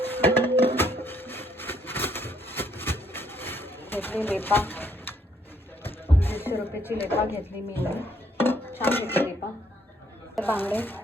घेतली लेपा, 200 रुपयाची लेपा घेतली मी. छान घेतली लेपा. बांगडे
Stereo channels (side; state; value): both; normal; correlation 0.69